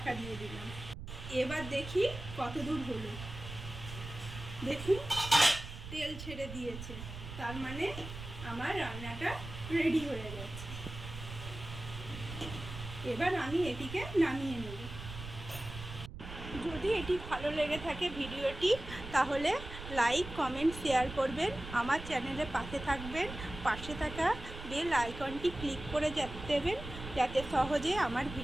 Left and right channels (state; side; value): noise; right; rumble, 11 dB below the sound